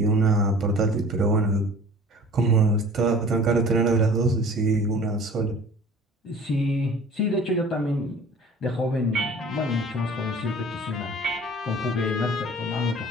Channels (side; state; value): both; normal; correlation 0.45